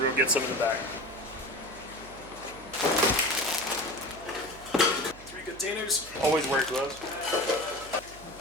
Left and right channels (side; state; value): right; noise; hum, 19 dB below the sound